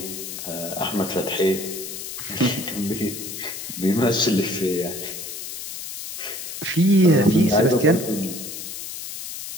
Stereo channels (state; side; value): noise; left; hiss, 8 dB below the sound